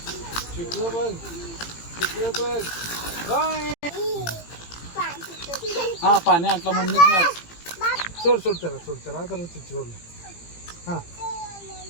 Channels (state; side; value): late; right; 18 ms